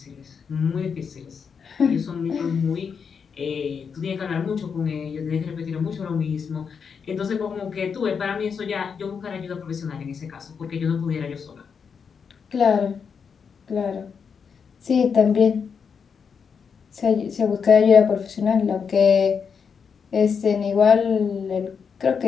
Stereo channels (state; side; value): quieter; right; 6.3 dB